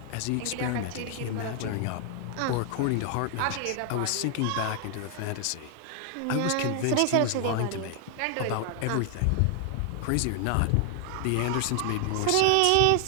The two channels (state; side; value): different; both; correlation 0.00